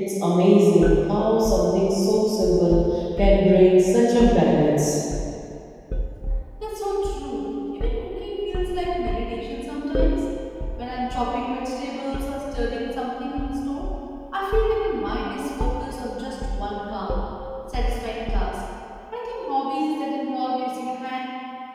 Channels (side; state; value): both; identical; correlation 1.00